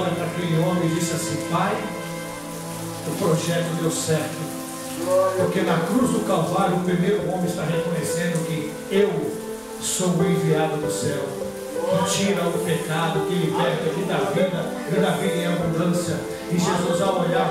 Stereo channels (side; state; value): both; identical; correlation 1.00